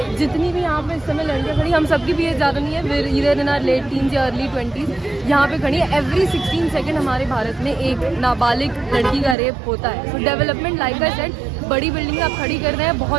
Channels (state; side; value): drops out; left; at 9.3 s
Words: जितनी भी यहाँ पे इस समय लड़कियाँ खड़ी, हम सबकी भी एज ज़्यादा नहीं है, फिर इधर इन आर लेट टीन्स या अर्ली 20s यहाँ पे खड़ी है। एवरी 16 सेकेंड हमारे भारत में एक नाबालिग लड़की का रेप होता है। सो डेवलपमेंट लाइक आई सेड, बड़ी बिल्डिंग आप खड़ी कर रहे हैं,